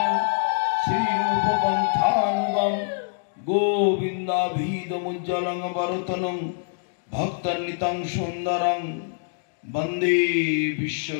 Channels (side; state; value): right; silent; digital silence